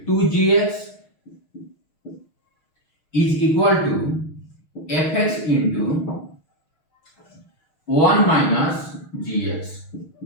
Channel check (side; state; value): right; late; 6.4 ms